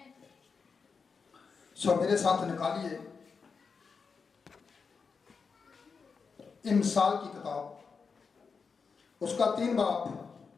सो मेरे साथ निकालिए इमसाल की किताब, उसका 3 बाब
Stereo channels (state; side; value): quieter; right; 5.3 dB